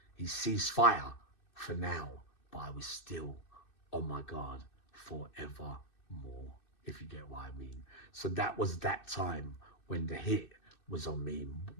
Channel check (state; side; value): late; right; 2.6 ms